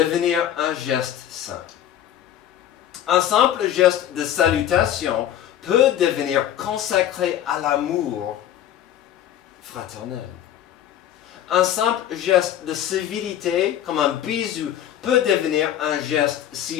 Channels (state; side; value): quieter; right; 11.1 dB